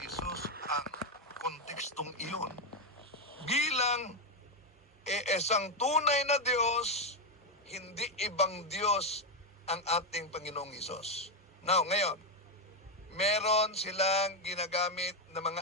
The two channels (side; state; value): both; normal; correlation 0.06